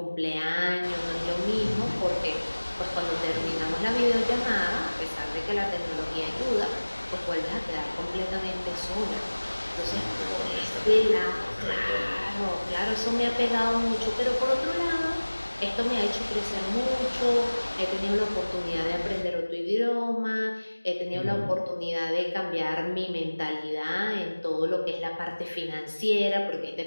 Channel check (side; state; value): both; inverted; correlation -1.00